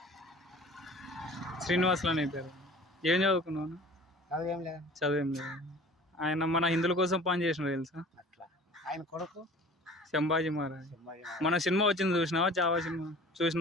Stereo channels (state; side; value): normal; both; correlation 0.45